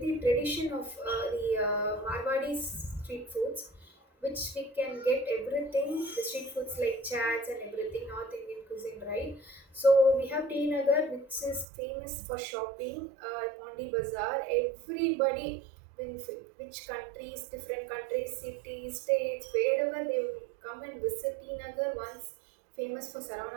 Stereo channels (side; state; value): left; drops out; at 11.7 s